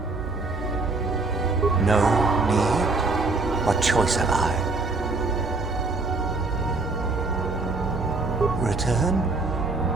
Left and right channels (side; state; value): left; quieter; 3.5 dB